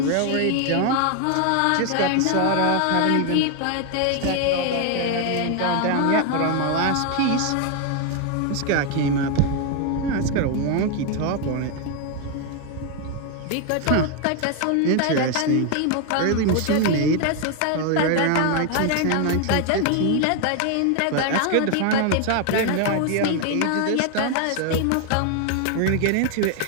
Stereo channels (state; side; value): different; both; correlation 0.01